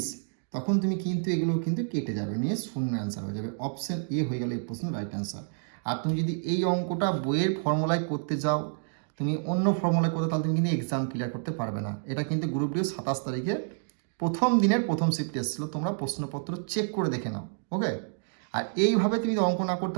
তখন তুমি কিন্তু এগুলো কিন্তু কেটে যাবে, নিয়ে শূন্য অ্যান্সার হয়ে যাবে। অপশন এ হয়ে গেল এই প্রশ্নের রাইট অ্যান্সার। আর তুমি যদি এই অঙ্কটা বইয়ের ফর্মুলায় করতে যাও, তুমি অন্য ফর্মুলায় করতে, তাহলে তুমি কিন্তু এক্সাম ক্লিয়ার করতে পারবে না। এটা কিন্তু গ্রুপ ডি 27 তারিখে প্রথম দিনের প্রথম শিফট এসেছিলো, তোমরা প্রশ্নপত্র চেক করে দেখে নাও। ওকে, আর এইভাবে তুমি অঙ্ক না করতে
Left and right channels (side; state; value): left; silent; digital silence